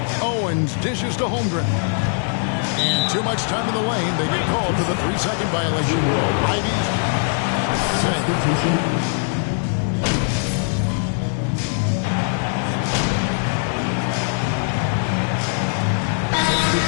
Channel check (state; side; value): silent; right; digital silence